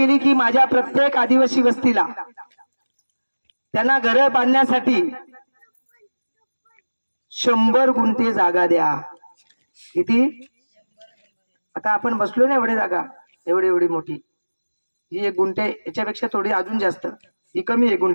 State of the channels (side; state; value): both; inverted; correlation -1.00